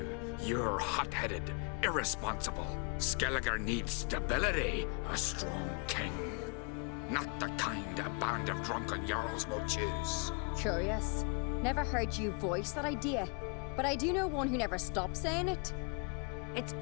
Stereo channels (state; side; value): quieter; right; 36.7 dB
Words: You're hot-headed, irresponsible. Skellige needs stability, a strong king. Not the kind a band of drunken jarls will choose. Curious. Never heard you voice that idea, but I do know one who never stops saying it. It's